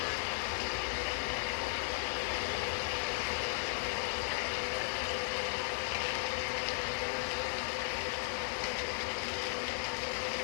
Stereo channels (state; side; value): silent; right; digital silence